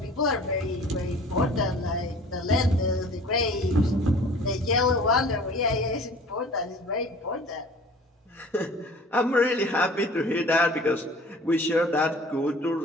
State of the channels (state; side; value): normal; both; correlation 0.46